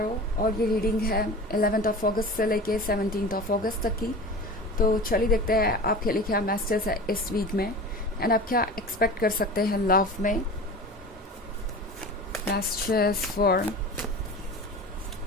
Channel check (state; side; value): normal; both; correlation 0.35